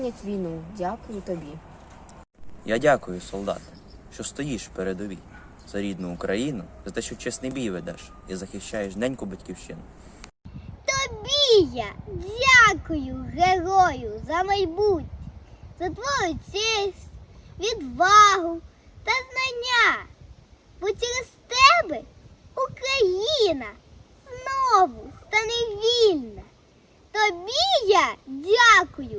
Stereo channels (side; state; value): both; identical; correlation 1.00